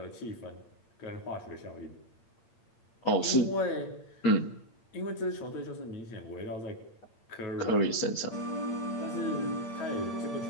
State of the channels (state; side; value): late; right; 8.8 ms